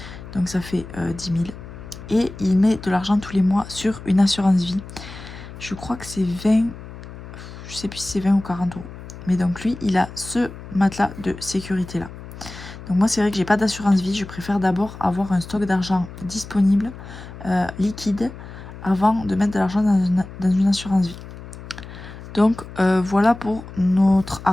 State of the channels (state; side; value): noise; left; hum, 14 dB below the sound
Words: Donc ça fait 10 000. Et il met de l'argent tous les mois sur une assurance vie. Je crois que c'est 20, je sais plus si c'est 20 ou 40 euros. Mais donc lui, il a ce matelas de sécurité là. Donc moi, c'est vrai que j'ai pas d'assurance vie. Je préfère d'abord avoir un stock d'argent disponible, liquide, avant de mettre de l'argent dans une assurance vie. Donc voilà pour notre